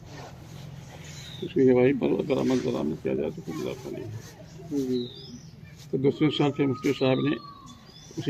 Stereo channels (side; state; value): both; identical; correlation 1.00